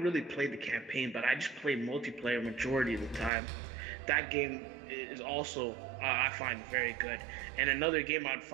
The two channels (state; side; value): drops out; left; at 3.3 s